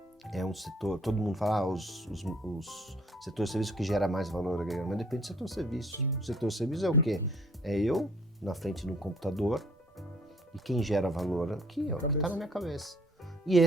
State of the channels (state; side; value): normal; both; correlation 0.59